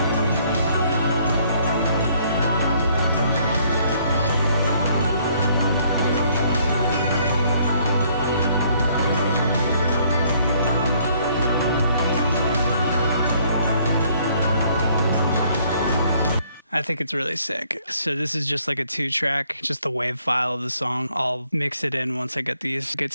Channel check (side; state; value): both; inverted; correlation -0.64